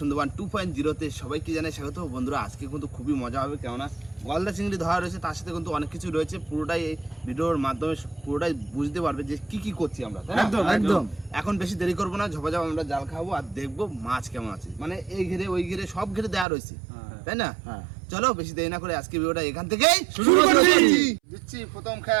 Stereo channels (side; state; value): left; drops out; at 16.4 s